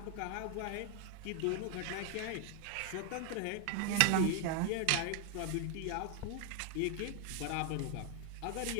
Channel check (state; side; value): different; both; correlation 0.00